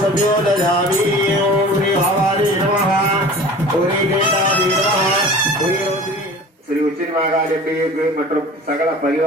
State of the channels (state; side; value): normal; both; correlation 0.41